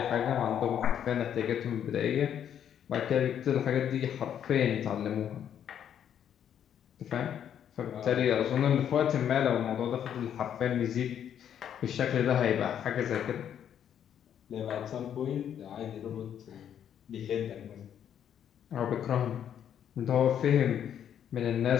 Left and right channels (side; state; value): right; quieter; 9.4 dB